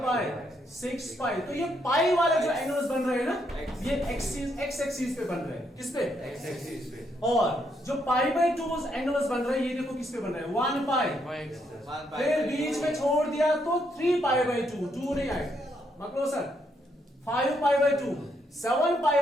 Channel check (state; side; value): normal; both; correlation 0.75